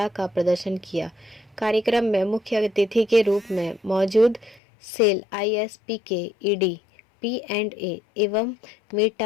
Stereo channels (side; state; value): right; drops out; at 4.6 s